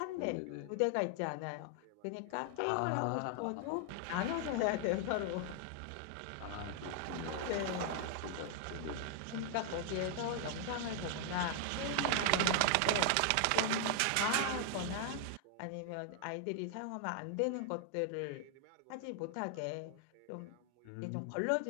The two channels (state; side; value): different; both; correlation 0.00